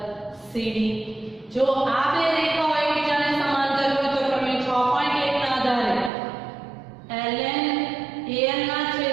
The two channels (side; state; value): left; drops out; at 6.1 s